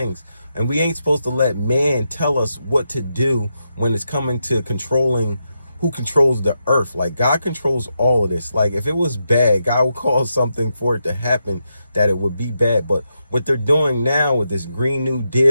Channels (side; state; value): both; inverted; correlation -0.85